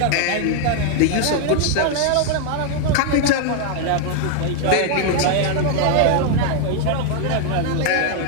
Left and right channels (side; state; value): both; different; correlation 0.00